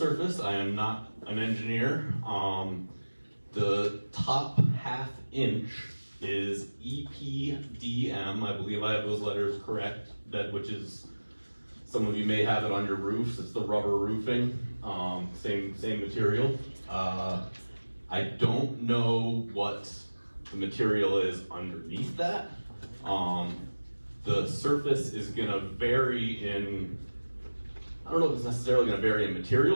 I am not an engineer. The top ½ inch is EPDM. I believe I have those letters correct. Which is, some of you may have it on your roofs. It's the rubber roofing, same material. I don't know what the material is underneath that. The surface is gonna vary in, I don't know if it's necessarily gonna vary in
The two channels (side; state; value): both; inverted; correlation -1.00